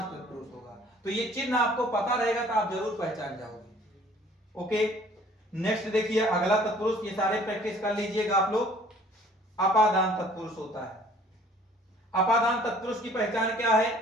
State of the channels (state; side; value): normal; both; correlation 0.54